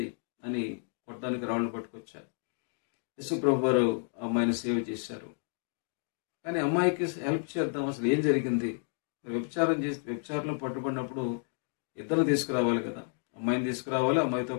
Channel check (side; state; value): right; silent; 57 dB below the other